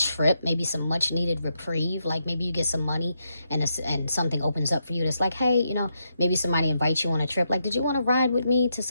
maybe some much needed reprieve. Like maybe you get some money and something opens up for you. That's like, hey, you know, maybe somebody invites you on a trip. Like, did you want to ride with me to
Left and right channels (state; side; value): inverted; both; correlation -0.82